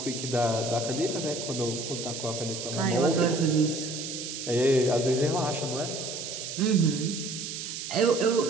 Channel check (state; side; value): noise; right; hiss, 7 dB below the sound